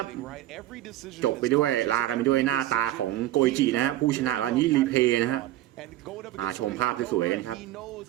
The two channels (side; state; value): left; quieter; 14.6 dB